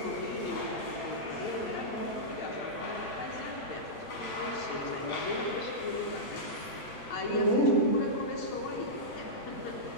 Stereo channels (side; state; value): right; late; 8.0 ms